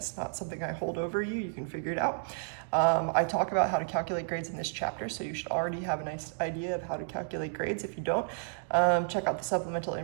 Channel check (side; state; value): left; silent; digital silence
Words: not something I hold over you. You can figure it out. I talk about how to calculate grades in this chapter, so you should already have a nice idea of how to calculate grades. If you don't, check out the supplemental